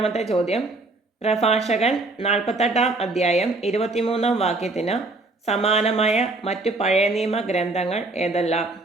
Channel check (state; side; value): quieter; left; 3.1 dB